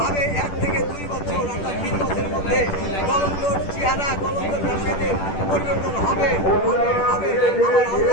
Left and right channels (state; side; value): late; right; 10 ms